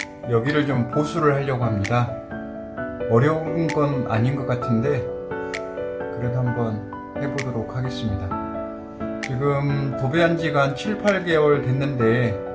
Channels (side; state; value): both; identical; correlation 1.00